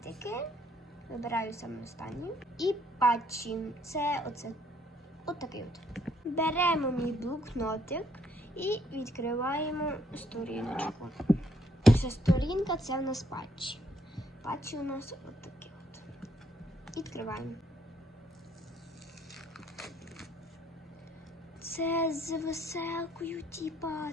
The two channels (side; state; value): both; normal; correlation 0.69